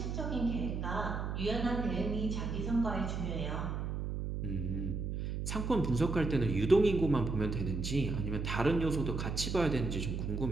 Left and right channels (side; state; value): right; noise; hum, 3 dB below the sound